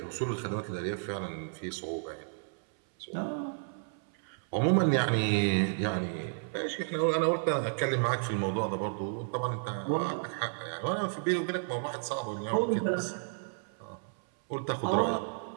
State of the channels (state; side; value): silent; left; 56 dB below the other